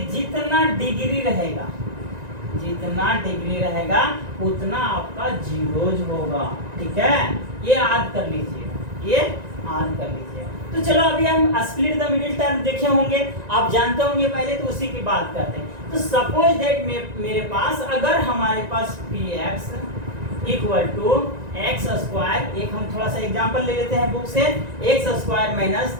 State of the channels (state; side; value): late; left; 1.9 ms